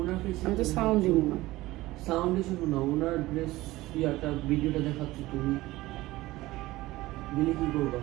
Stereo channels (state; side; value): quieter; left; 18.1 dB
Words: আমি তো সাউন্ড দিব না। সাউন্ড শুনো না, ওনার ড্রেস ইয়াটা ভিডিওটা দেখাচ্ছি, তুমি দিলে কি করবা?